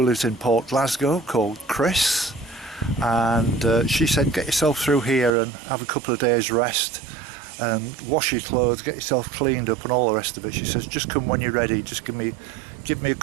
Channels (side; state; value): left; drops out; at 5.3 s